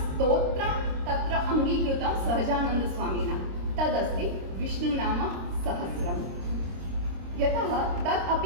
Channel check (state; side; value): late; left; 26 ms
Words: तत्र अङ्गीकृतं सहजानन्दस्वामिना, तदस्ति विष्णुनाम सहस्रम्। यतः तत्